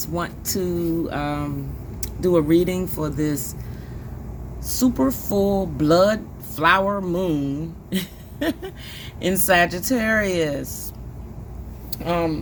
want to do a reading for this super full blood flower moon in Sagittarius.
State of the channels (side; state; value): both; identical; correlation 1.00